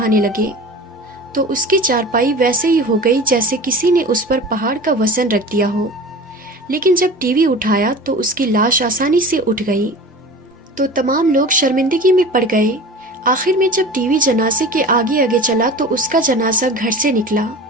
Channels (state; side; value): normal; both; correlation 0.36